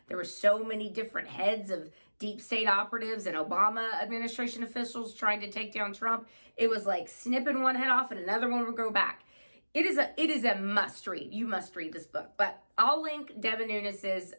There were so many different heads of deep state operatives and Obama administration officials trying to take down Trump. It was like snipping one head off and another one would grow back. It is a must read. You must read this book. But I'll link Devin Nunes's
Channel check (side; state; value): both; inverted; correlation -1.00